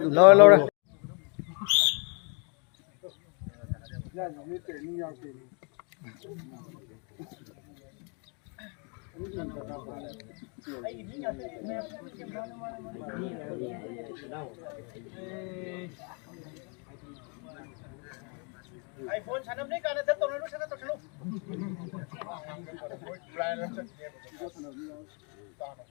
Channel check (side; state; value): right; quieter; 36.4 dB